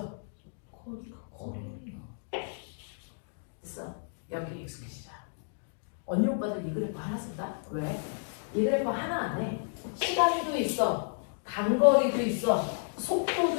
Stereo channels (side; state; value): right; silent; digital silence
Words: 됐어. 여기 익숙해지자. 언니 오빠들 이 그래프 하나 쓴다? 왜? 이 그래프 하나 안에 시간도 있어, 단거리도 있어,